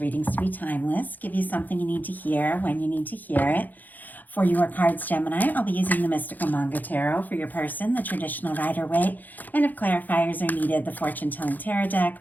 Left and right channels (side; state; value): right; late; 0.084 ms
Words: to be timeless, give you something you need to hear when you need to hear it. For your cards, Gemini, I'll be using the Mystical Manga Tarot. For your person, the traditional Rider-Waite, and if clarifiers are needed, the Fortune Telling Tarot Deck